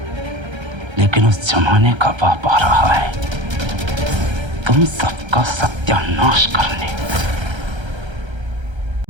लेकिन उस जमाने का बाप आ रहा है तुम सबका सत्यानाश करने।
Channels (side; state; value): left; late; 1.3 ms